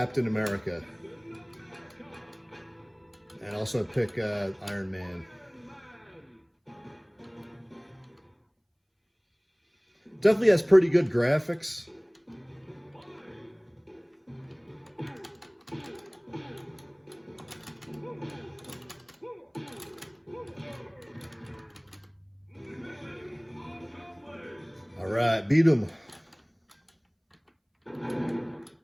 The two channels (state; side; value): identical; both; correlation 1.00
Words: America. And also pick Iron Man. Definitely has pretty good graphics. All right, beat him.